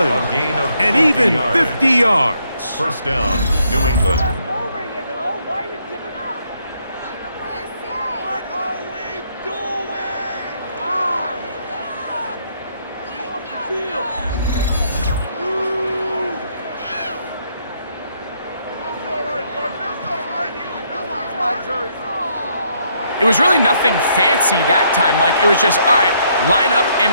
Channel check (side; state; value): both; inverted; correlation -0.71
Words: And even 50 yards. First down, New England. It was really nothing fancy that time, Mike. It was just, all right, line up and